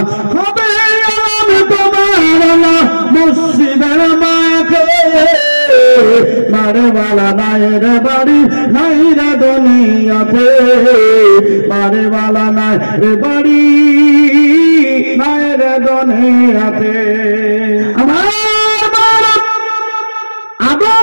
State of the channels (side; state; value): both; inverted; correlation -1.00